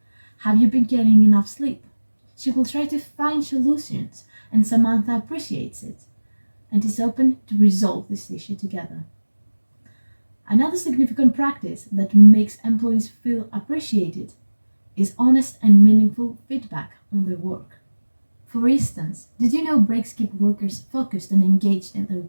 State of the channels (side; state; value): both; inverted; correlation -1.00